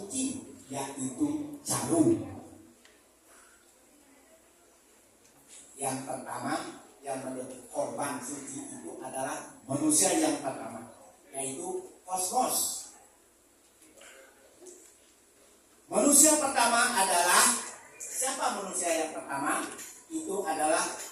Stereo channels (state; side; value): identical; both; correlation 1.00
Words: yaitu jarum. Yang pertama yang menjadi korban suci itu adalah manusia yang pertama, yaitu kosmos. Manusia pertama adalah siapa? Manusia yang pertama itu adalah